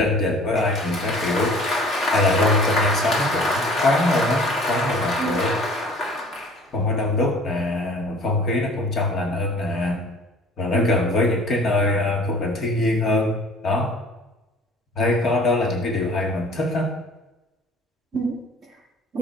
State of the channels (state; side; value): normal; both; correlation 0.48